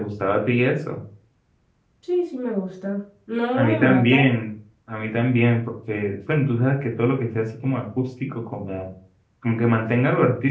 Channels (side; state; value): both; identical; correlation 1.00